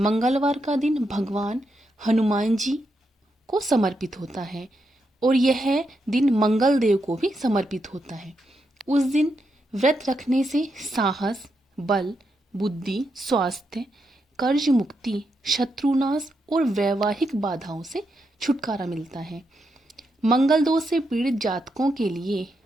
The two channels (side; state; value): both; normal; correlation 0.83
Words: का दिन भगवान हनुमान जी को समर्पित होता है और यह दिन मंगल देव को भी समर्पित होता है। उस दिन व्रत रखने से साहस, बल, बुद्धि, स्वास्थ्य, कर्ज मुक्ति, शत्रुनाश और वैवाहिक बाधाओं से छुटकारा मिलता है। मंगल दोष से पीड़ित जातकों के लिए